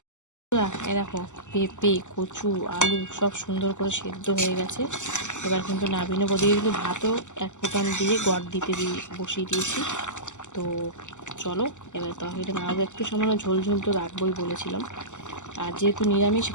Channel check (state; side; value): late; right; 0.84 ms